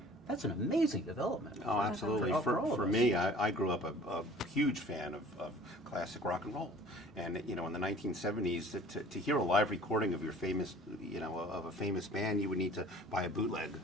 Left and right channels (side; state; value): both; normal; correlation 0.47